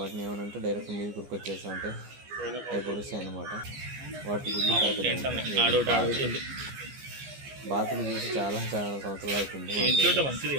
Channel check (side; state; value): left; late; 14 ms